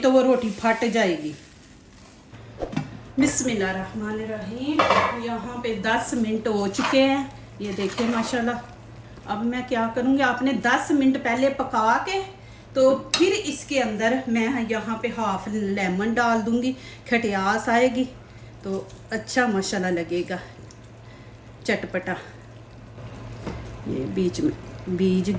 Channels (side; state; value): both; identical; correlation 1.00